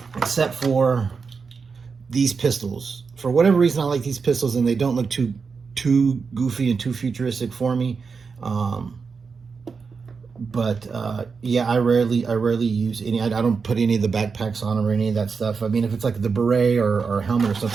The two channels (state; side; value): quieter; left; 5.2 dB